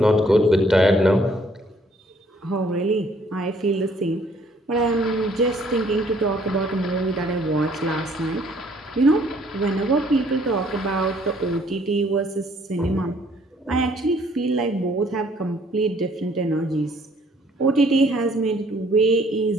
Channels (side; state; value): both; normal; correlation 0.62